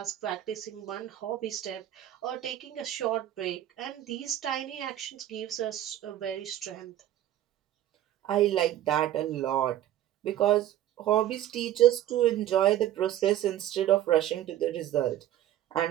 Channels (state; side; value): quieter; left; 12.4 dB